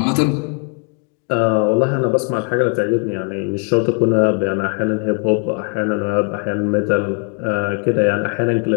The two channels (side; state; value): right; quieter; 36.5 dB